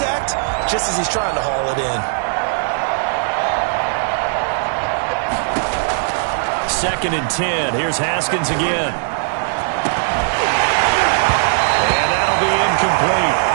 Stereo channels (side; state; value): left; silent; 67 dB below the other